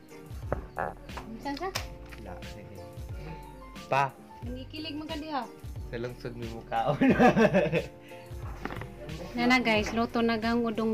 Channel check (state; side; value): identical; both; correlation 1.00